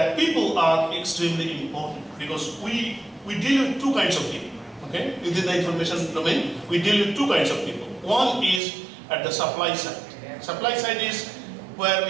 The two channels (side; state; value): left; drops out; at 8.6 s